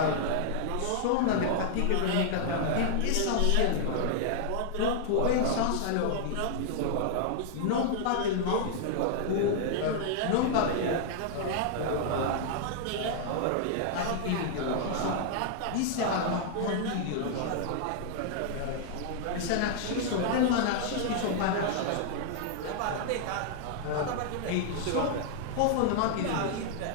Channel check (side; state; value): both; different; correlation -0.01